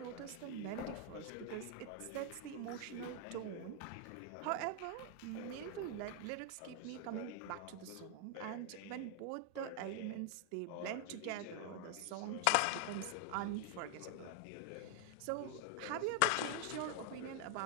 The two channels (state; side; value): different; both; correlation 0.00